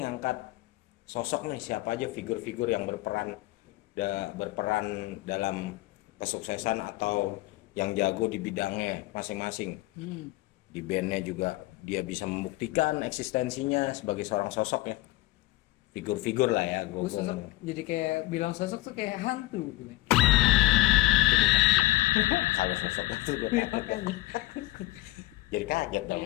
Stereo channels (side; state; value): right; quieter; 18.7 dB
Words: ngangkat sosok nih, siapa aja figur-figur yang berperan dalam kesuksesan atau yang jago di bidangnya masing-masing. Di bandnya juga dia bisa membuktikan eksistensinya sebagai seorang sosok ya. Figur-figur lah ya Gua sosok, jadi kayak bilang sosok tuh kayak hantu gitu. Kalau sosok itu jadi kaget dong